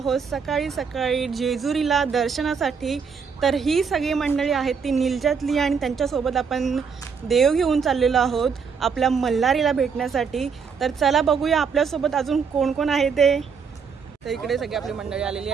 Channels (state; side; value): quieter; left; 6.0 dB